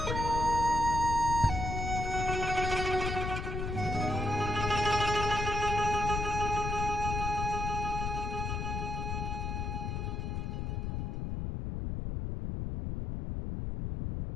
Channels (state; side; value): noise; left; rumble, 2 dB below the sound